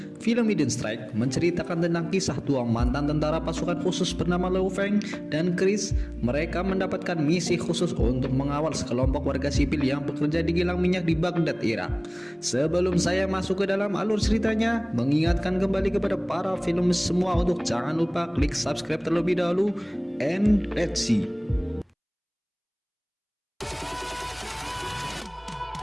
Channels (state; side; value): identical; both; correlation 1.00